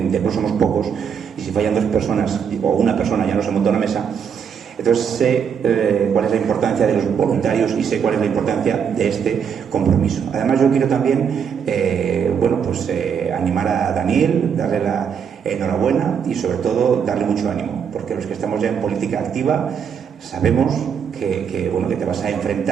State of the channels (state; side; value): quieter; left; 7.3 dB